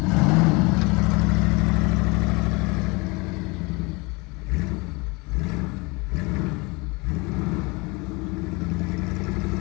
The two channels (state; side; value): quieter; right; 26.7 dB